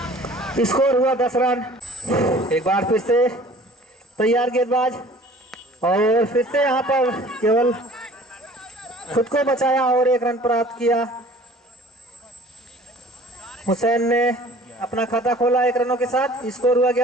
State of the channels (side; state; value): both; normal; correlation 0.49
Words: स्कोर हुआ 10 रन। एक बार फिर से तैयार गेंदबाज, और फिर से यहाँ पर केवल खुद को बचाया, और 1 रन प्राप्त किया। हुसैन ने अपना खाता खोला 1 रनों के साथ। स्कोर हुआ